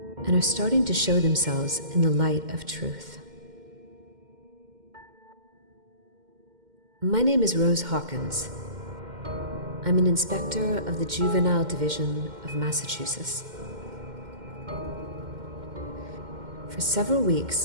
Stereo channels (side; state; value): left; late; 2.1 ms